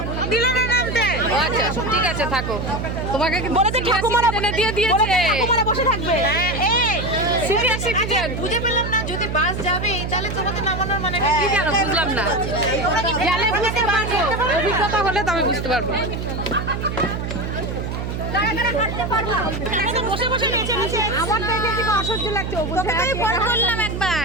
দিলে না নামতে। আচ্ছা ঠিক আছে, থাকো। তোমাকে কি বলেছে ঠাকুমারা এনে দিয়ে দিয়েছে? ঠাকুমারা বসে থাকবে। হ্যাঁ, এই সিনিয়র সিটিজেন। বুঝে পেলাম না, যদি বাস যাবে তাহলে তোমাকে নামানোর মানে কি জানো, বুঝলাম না। গেলে বুঝতে পারবো, অভিজ্ঞতা হলে তবে বুঝতে পারবো। আমার তো এখানে থেকে অসহ্য লাগছে। তোকে তো ফোন করলাম একবার,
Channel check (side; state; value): right; noise; hum, 4 dB below the sound